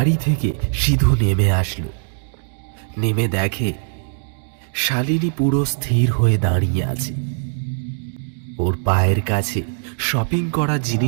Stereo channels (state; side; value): silent; left; digital silence